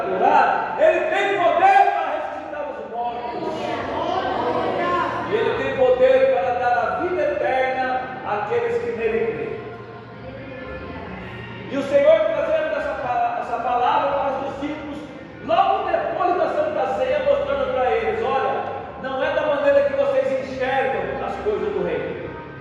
curar, Ele tem poder para ressuscitar os mortos, e Ele tem poder para dar a vida eterna àqueles que nele creem. E o Senhor trazendo essa palavra para os discípulos, logo depois da Santa Ceia, mostrando para eles: olha, não é da maneira que vocês enxergam as coisas do reino,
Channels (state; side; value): identical; both; correlation 1.00